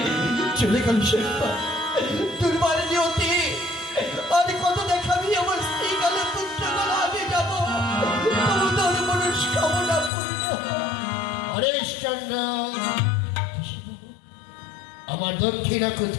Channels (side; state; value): right; drops out; at 10.1 s